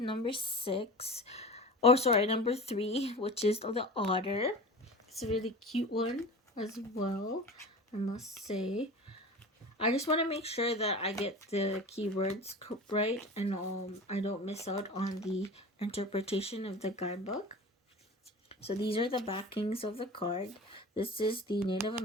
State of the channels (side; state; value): both; normal; correlation 0.34